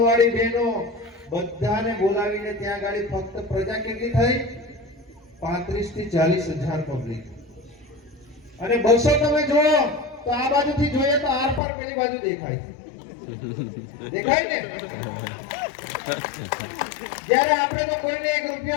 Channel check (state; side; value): drops out; right; at 11.6 s